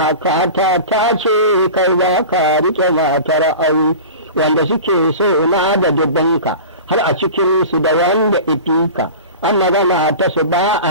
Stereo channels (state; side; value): inverted; both; correlation -0.35